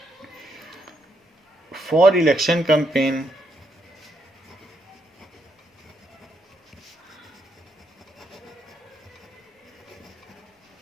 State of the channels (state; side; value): normal; both; correlation 0.77